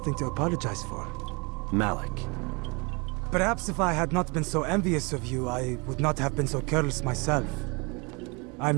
to apologize for. Malik. Perhaps if I had not been so envious of you, I would not have been so careless myself.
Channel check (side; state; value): left; quieter; 29.4 dB